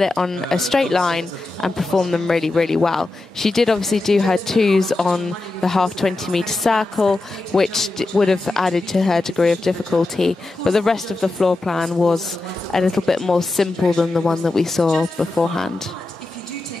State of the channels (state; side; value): quieter; right; 3.0 dB